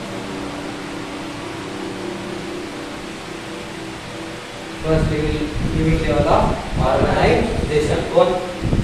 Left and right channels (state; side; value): identical; both; correlation 1.00